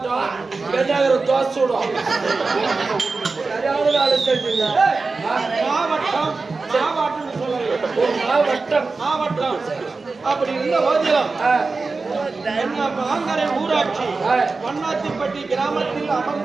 பெண்ணாகர தோசூடம் மாவட்டம் மாவட்டம் மாவட்டம் அப்படி இருந்த போதிலும் மாங்கரை ஊராட்சி மண்ணாத்திப்பட்டி கிராமத்தில்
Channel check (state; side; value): quieter; left; 4.0 dB